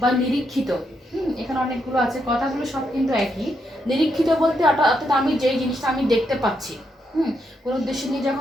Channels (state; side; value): normal; both; correlation 0.79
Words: নিরীক্ষিত, এখানে অনেকগুলো আছে, কথাগুলো সব কিন্তু একই। নিরীক্ষিত বলতে অর্থাৎ আমি যেই জিনিসটা আমি দেখতে পাচ্ছি, কোনো উদ্দেশ্য নিয়ে